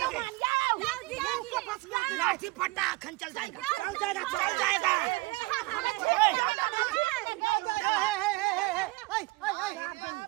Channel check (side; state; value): left; quieter; 22.8 dB